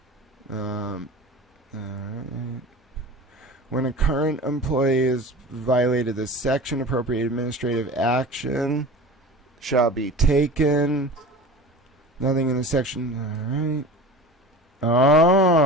All right. When a current employee has violated this section, appropriate administrative action shall be taken. Nothing in the section. All right.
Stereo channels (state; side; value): normal; both; correlation 0.35